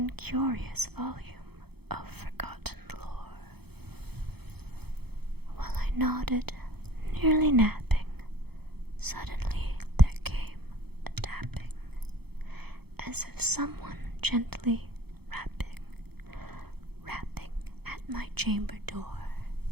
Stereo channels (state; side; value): late; left; 0.97 ms